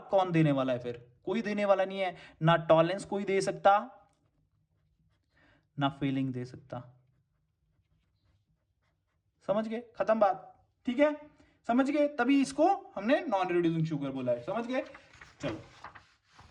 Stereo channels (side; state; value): both; identical; correlation 1.00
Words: कौन देने वाला है फिर, कोई देने वाला नहीं है, ना टॉलरेंस कोई दे सकता, ना फेलिंग दे सकता। समझ गए, खत्म बात, ठीक है, समझ गए। तभी इसको हमने नॉन रिड्यूसिंग शुगर बोला है, समझ गए। चलो